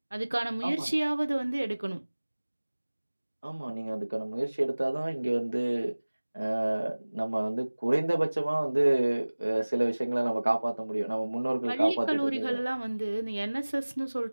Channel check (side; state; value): both; inverted; correlation -1.00